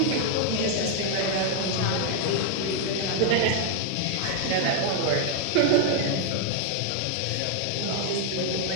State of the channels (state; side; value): different; both; correlation 0.00